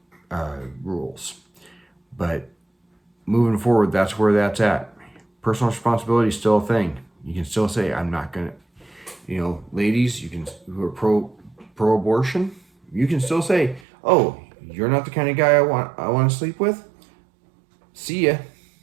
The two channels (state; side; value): drops out; left; at 13.8 s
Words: rules. But moving forward, that's where that's at. Personal responsibility is still a thing. You can still say, I'm not going to, ladies, who are pro-abortion, you can still say, oh, you're not the kind of guy I want to sleep with? See ya.